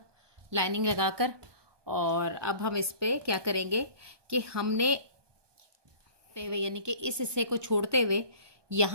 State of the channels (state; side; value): late; left; 1.2 ms